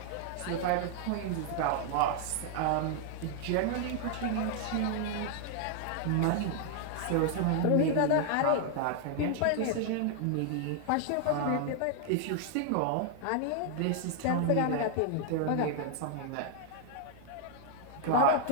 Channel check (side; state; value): both; different; correlation 0.00